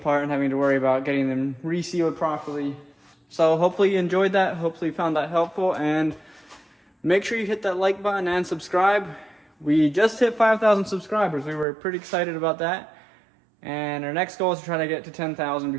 and having to worry about getting them resealed properly. So hopefully you enjoyed that. Hopefully you found that helpful, and make sure you hit that like button and subscribe. We just hit 5,000 subscribers. We were pretty excited about that. And our next goal is to try to get to 10,000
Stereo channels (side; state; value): left; drops out; at 11.7 s